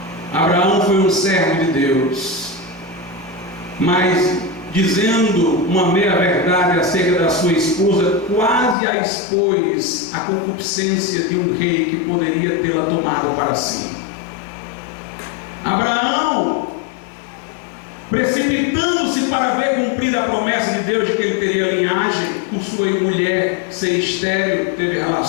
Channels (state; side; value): drops out; right; at 8.8 s